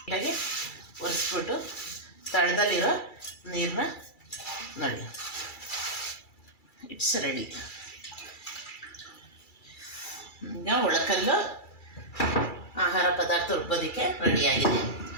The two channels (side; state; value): right; late; 2.3 ms